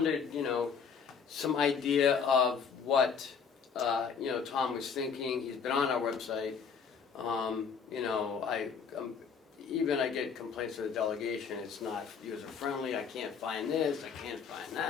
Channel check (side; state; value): right; quieter; 6.3 dB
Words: some idea of what, Tom was thinking. He's been on our website. Even I get complaints of the delegation, it's not user-friendly, I can't find this, I can't find